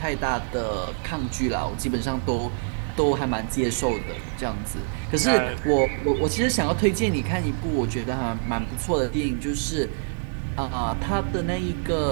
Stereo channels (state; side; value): silent; left; digital silence